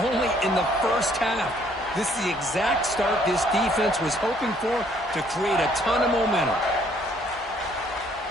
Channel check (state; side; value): normal; both; correlation 0.64